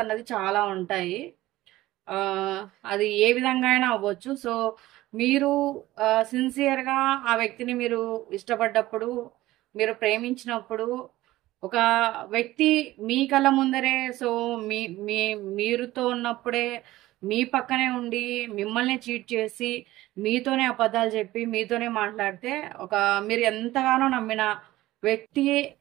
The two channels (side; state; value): left; quieter; 16.8 dB